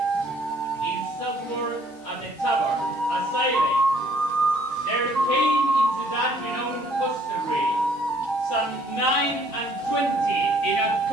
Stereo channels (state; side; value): normal; both; correlation 0.62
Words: southward at the tavern, a silent, there came into that renowned hostelry some 29 in a